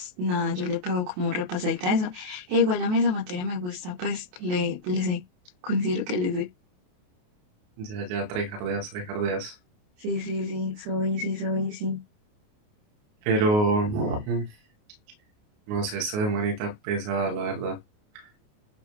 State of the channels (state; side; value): late; left; 28 ms